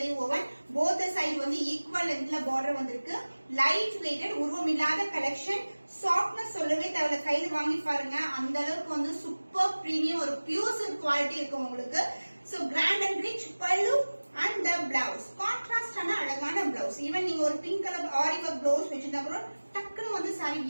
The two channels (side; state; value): both; inverted; correlation -1.00